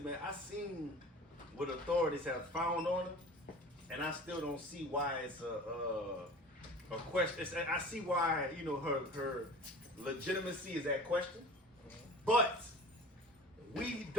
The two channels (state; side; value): normal; both; correlation 0.40